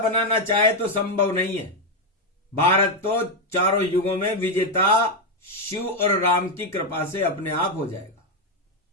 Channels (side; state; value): both; normal; correlation 0.04